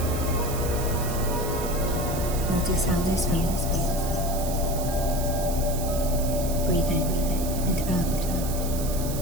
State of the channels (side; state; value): right; noise; hiss, 9 dB below the sound